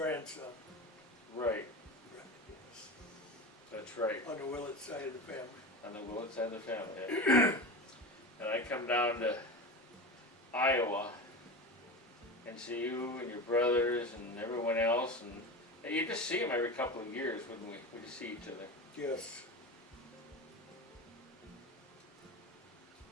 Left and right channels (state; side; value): normal; both; correlation 0.26